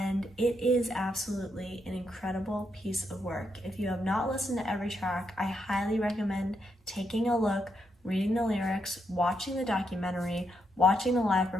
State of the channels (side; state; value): both; normal; correlation 0.80